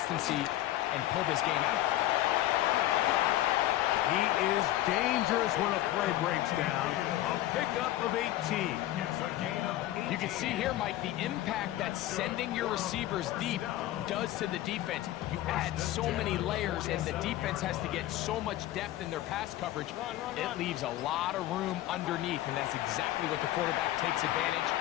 and pull this game out? He is dangerous when a play breaks down. A pickup of 18. You can see here, Mike, the impact that sending your receivers deep does to the defense. You add so many layers, and the defense has to get so much depth in their pass coverage. It leaves a lot of room underneath, and that's exactly what the quarterback takes advantage.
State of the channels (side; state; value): right; quieter; 14.8 dB